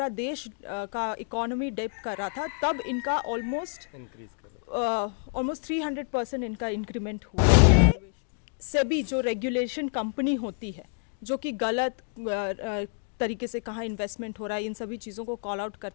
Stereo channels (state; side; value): silent; right; 59 dB below the other